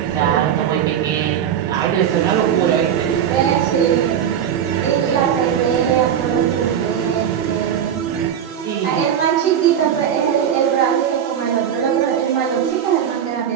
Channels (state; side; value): quieter; left; 9.0 dB